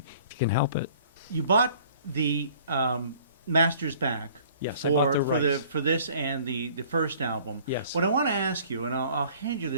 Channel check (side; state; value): both; inverted; correlation -0.53